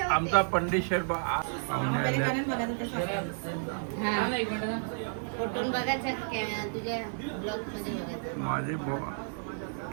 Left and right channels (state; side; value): silent; left; digital silence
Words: पंडित शेठ माझे